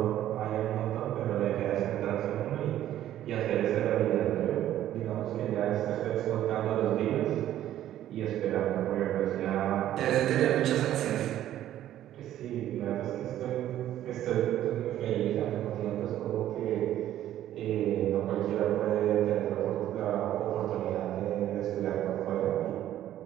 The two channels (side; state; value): left; quieter; 12.4 dB